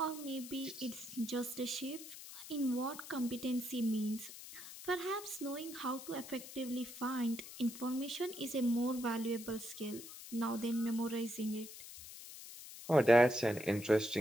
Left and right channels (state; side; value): noise; left; hiss, 13 dB below the sound